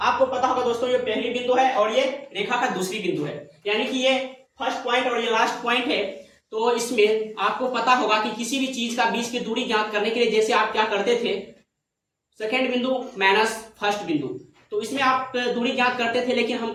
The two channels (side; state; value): both; identical; correlation 1.00